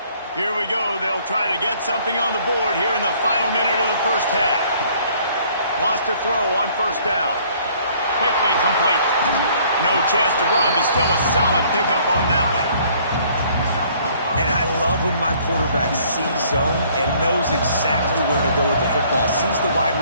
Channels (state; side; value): inverted; both; correlation -0.59